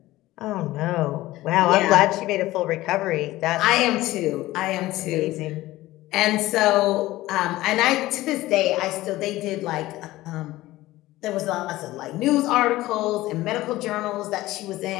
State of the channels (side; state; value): right; quieter; 17.1 dB